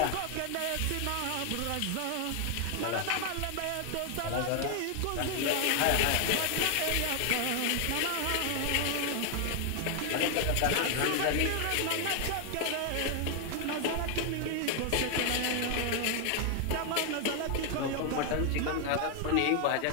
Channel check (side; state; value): both; different; correlation 0.00